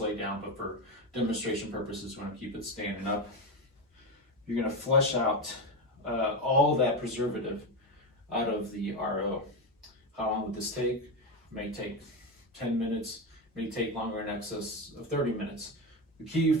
down, but for demonstration purposes, we want to keep it standing up. You're going to flush out all that preservative out of the RO. How long would this take? It may take 10 minutes, it may take longer, in excess of 30 minutes. The key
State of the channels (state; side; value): normal; both; correlation 0.15